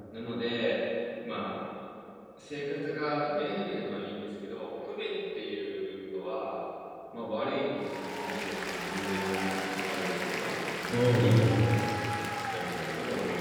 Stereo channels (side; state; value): both; identical; correlation 1.00